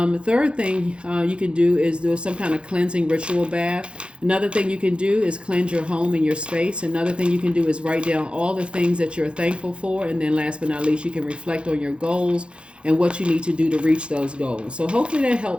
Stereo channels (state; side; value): late; left; 0.057 ms